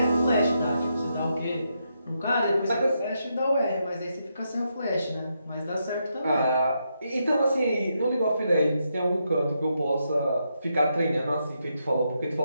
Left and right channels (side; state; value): both; inverted; correlation -0.81